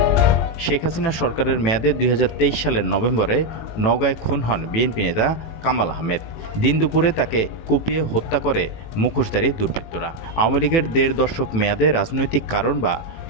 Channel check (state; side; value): late; right; 18 ms